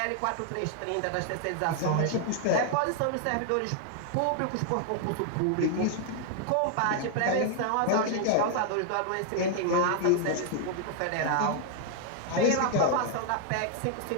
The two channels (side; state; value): both; different; correlation 0.00